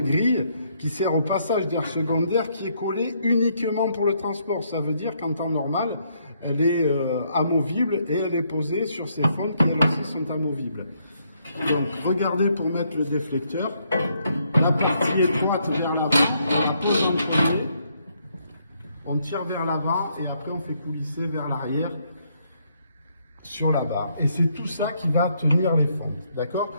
qui sert au passage d'air secondaire qui est collé uniquement pour le transport. Ça veut dire qu'en temps normal, elle est amovible et elle est posée sur ces fentes qui elles aussi sont amovibles. Donc regardez pour mettre le déflecteur, la partie étroite vers l'avant, on la pose en premier, on tire vers l'avant et après on fait coulisser vers l'arrière sur la barre. Et c'est tout ça qui va tenir les fentes,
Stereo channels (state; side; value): inverted; both; correlation -0.73